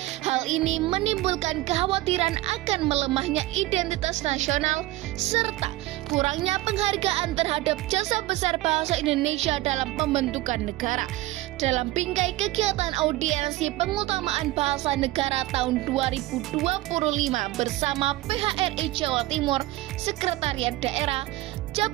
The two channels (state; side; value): quieter; left; 17.7 dB